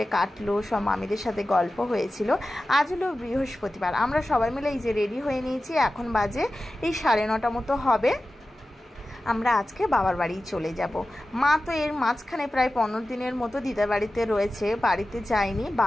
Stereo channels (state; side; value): normal; both; correlation 0.94